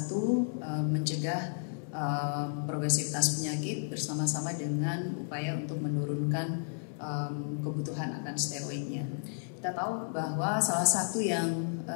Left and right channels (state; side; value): silent; right; 56 dB below the other